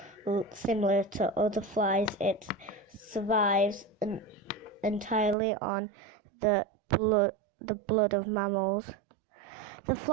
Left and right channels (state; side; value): drops out; left; at 5.4 s